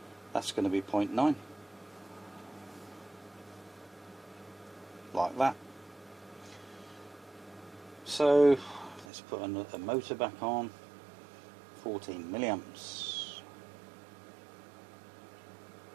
that's going to be 0.9, like that. So let's put another motor back on, 14 milliamps.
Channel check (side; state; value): left; drops out; at 9.1 s